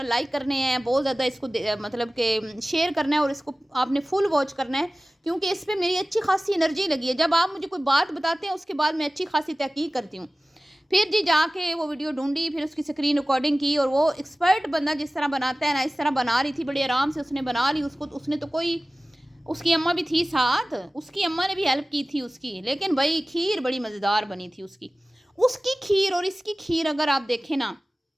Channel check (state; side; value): normal; both; correlation 0.97